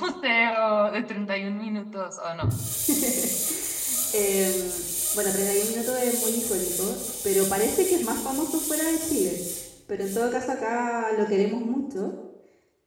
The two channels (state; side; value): identical; both; correlation 1.00